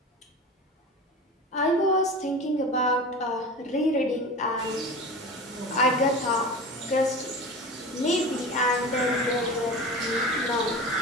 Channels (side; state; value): both; normal; correlation 0.32